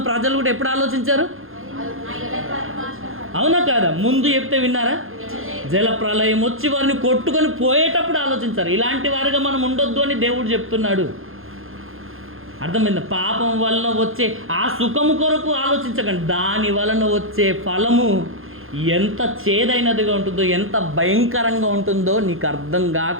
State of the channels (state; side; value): late; left; 0.60 ms